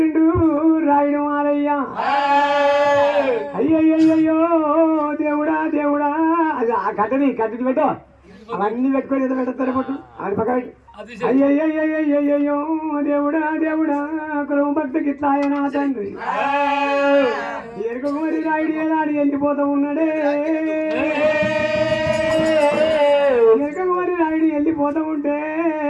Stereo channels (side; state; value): both; identical; correlation 1.00